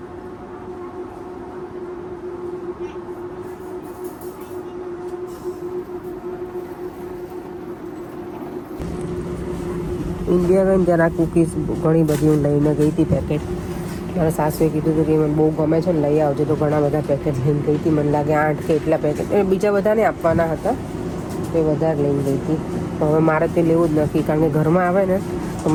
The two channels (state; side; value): identical; both; correlation 1.00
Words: ઇન્ડિયા ગઈ ત્યારે આ કૂકીઝ ઘણી બધી હું લઈને ગઈ હતી પેકેટ. મારા સાસુએ કીધું હતું કે મને બહુ ગમે છે ને લઈ આવજો, તો ઘણા બધા પેકેટ લઈને ગઈ હતી. મને લાગે 8 કે એટલા પેકેટ, બીજા બધાને આપવાના હતા તો એ વધારે લઈને ગઈ હતી. તો હવે મારે તે લેવું જ નથી, કારણ કે ઘરમાં આવે ને તો